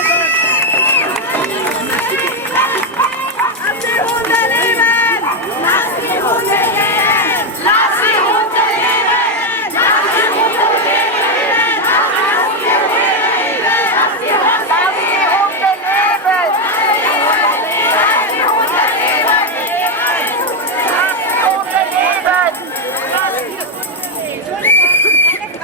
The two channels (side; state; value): both; normal; correlation 0.05